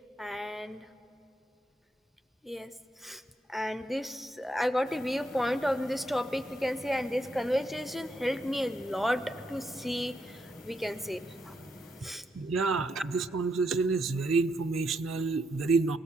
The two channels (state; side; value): normal; both; correlation 0.79